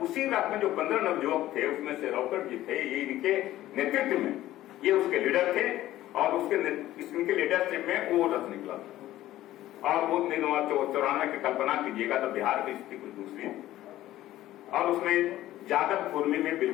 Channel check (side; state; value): right; quieter; 14.6 dB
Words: उसी रात में जो 15 नवयुवक थे उसमें से रॉकेट जी थे, ये इनके नेतृत्व में ये उसके लीडर थे, और इसके लीडरशिप में वो रथ निकला था। और वो 94 की कल्पना कीजिएगा तो बिहार की स्थिति कुछ दूसरी थी, और उसमें यादव कुर्मी में